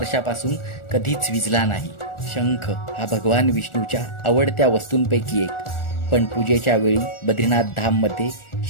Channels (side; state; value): right; late; 1.4 ms